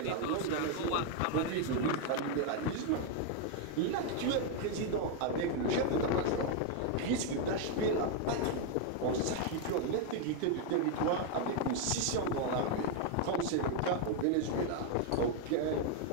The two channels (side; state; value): both; different; correlation 0.01